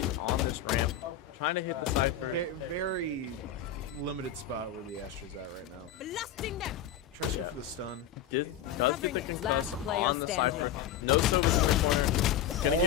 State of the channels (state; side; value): quieter; right; 9.1 dB